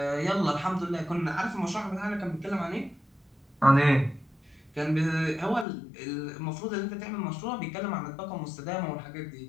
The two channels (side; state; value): right; drops out; at 5.7 s